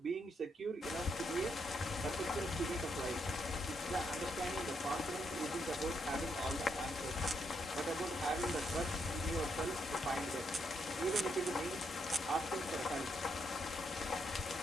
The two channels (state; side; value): normal; both; correlation 0.78